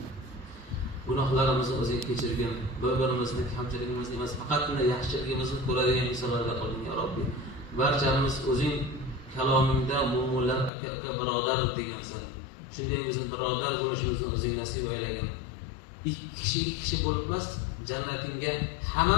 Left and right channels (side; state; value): right; drops out; at 10.7 s